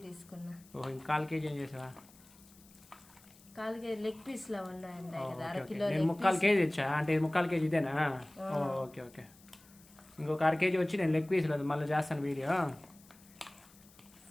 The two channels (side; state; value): left; noise; hiss, 25 dB below the sound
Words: తీసుకున్నా. ఓహో, ఇంకా 1/4 కేజీ ఏం చేసావా? 1/4 కేజీ లెగ్ పీస్ లో ఉన్నాయి కదా, 1/2 కిలో. నేను 3/4 కేజీ ఇచ్చా అంటే 3/4 కేజీ ఇదేనా? Okay okay. ఇంకొక 1/2 కేజీ వచ్చి నేను లెగ్ పీస్ లేదు, మళ్ళీ చేస్తాను వీడియో.